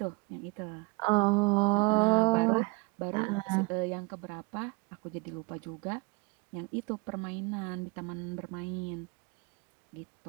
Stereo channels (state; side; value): quieter; left; 28.6 dB